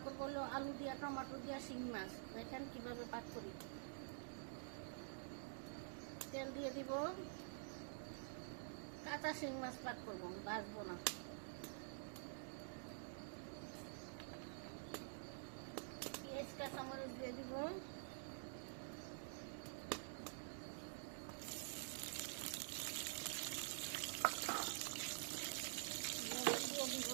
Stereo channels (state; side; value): silent; left; digital silence